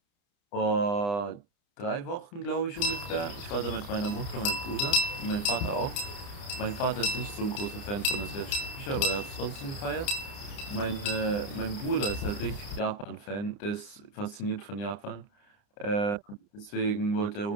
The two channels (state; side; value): late; right; 29 ms